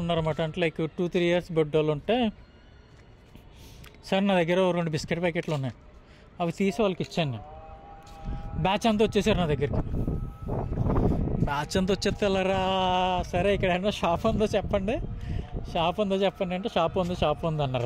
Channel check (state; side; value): identical; both; correlation 1.00